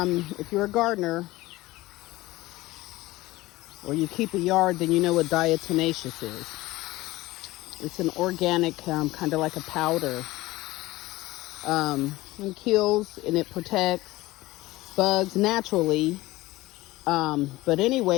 If you're a gardener or you keep a yard, then you know what diatomaceous is. It's an organic, kind of like a powder. It kills and it protects bugs naturally. But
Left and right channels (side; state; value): right; quieter; 18.8 dB